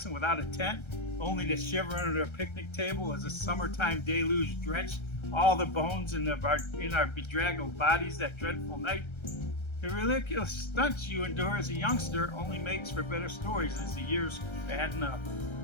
without a tent, only to shiver under a picnic table as a summertime deluge drenched all the bones in our bedraggled bodies that dreadful night? The ridiculous stunts you endure as a youngster only makes for better stories as the years fatten up.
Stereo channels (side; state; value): right; late; 1.3 ms